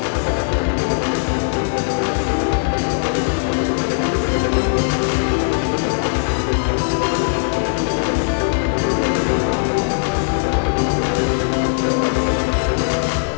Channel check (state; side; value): silent; right; 65 dB below the other